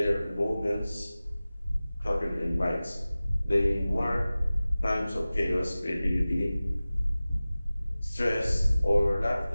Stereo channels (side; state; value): both; inverted; correlation -0.97